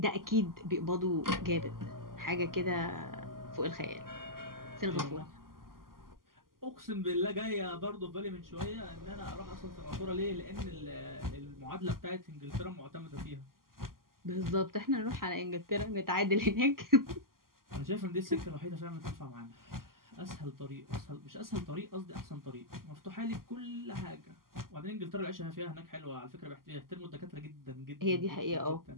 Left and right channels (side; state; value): left; late; 0.92 ms